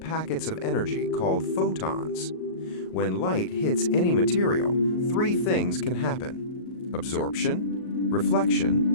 of energy called photons. When light hits any material, three things can happen: absorption,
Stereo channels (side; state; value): right; late; 38 ms